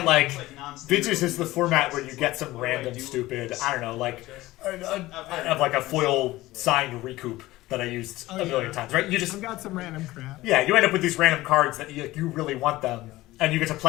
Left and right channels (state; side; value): quieter; right; 17.8 dB